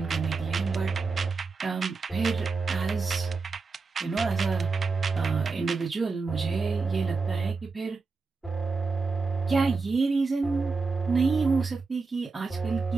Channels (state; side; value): quieter; left; 4.3 dB